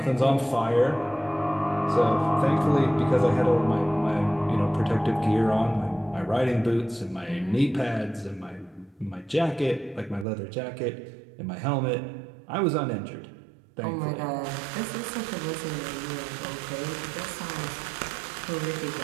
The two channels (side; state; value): left; drops out; at 10.2 s